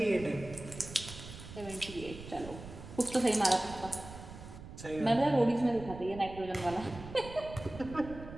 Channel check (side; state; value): right; noise; rumble, 13 dB below the sound